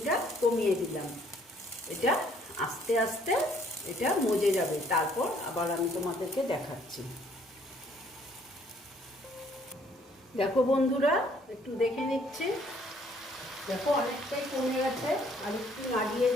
কমিয়ে দিলাম। এটা আস্তে আস্তে এটা মজে যাবে, তারপর আবার আমি তোমাদেরকে দেখাচ্ছি। দেখো বন্ধুরা, একটু দেখে নিচ্ছি। দেখো অনেকটাই কমে গেছে, আর একটু নাড়িয়ে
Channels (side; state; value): both; normal; correlation 0.63